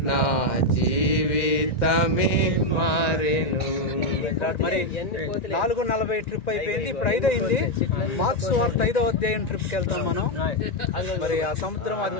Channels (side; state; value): right; late; 1.9 ms